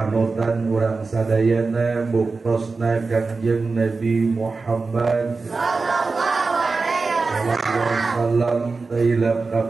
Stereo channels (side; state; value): left; quieter; 4.1 dB